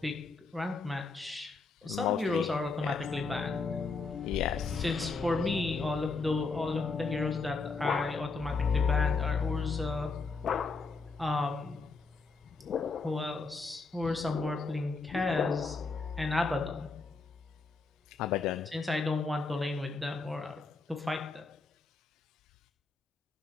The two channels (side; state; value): right; quieter; 4.1 dB